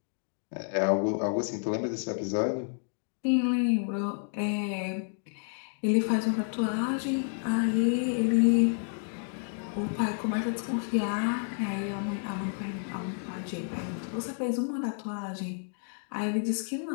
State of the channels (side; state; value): right; silent; 58 dB below the other